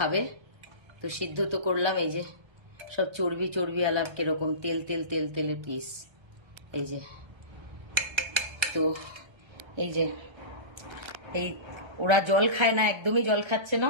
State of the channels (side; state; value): left; late; 1.3 ms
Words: তো সিদ্ধ তো করলাম। এই যে সব চর্বি চর্বি আলাপ, কিরকম তেল তেল তেল তেলের পিস। এই যে, তো এই যে, এই ওরা জল খায় না, একদমই জল খাচ্ছে